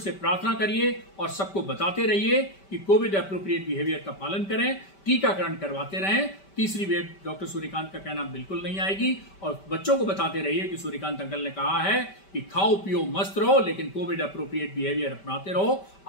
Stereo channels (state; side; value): late; right; 5.1 ms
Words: प्रार्थना करिए और सबको बताते रहिए कि कोविड एप्रोप्रिएट बिहेवियर का पालन करें, टीकाकरण करवाते रहें। तीसरी वेव डॉक्टर सूर्यकांत का कहना बिल्कुल नहीं आएगी। और बच्चों को बताते रहिए कि सूर्यकांत अंकल ने कहा है कि खाओ पियो मस्त रहो, लेकिन कोविड एप्रोप्रिएट बिहेवियर अपनाते रहो,